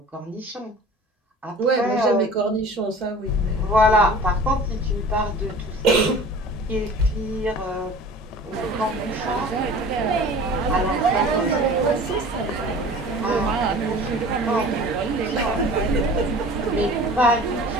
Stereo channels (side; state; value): both; normal; correlation 0.42